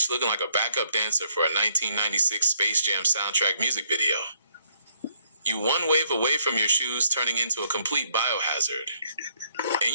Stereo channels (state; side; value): inverted; both; correlation -0.69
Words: looking like a backup dancer for a 1996 Space Jam soundtrack music video. You one wave away from your shoes turning into a complete biohazard. And